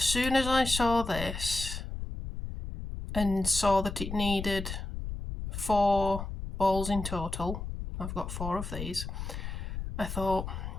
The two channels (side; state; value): left; noise; rumble, 6 dB below the sound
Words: soon as I saw this and saw that it needed 4 balls in total, I've got 4 of these, I thought,